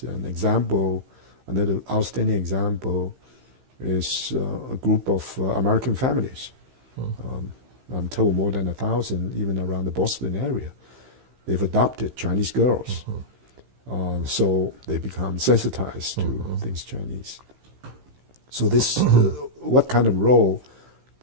Another outstanding example is a group of American families. I'm told more than 1,000, even around the Boston area. They've adopted Chinese girls, so they become sensitized to things Chinese. So this, what kind of role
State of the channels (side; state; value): left; late; 15 ms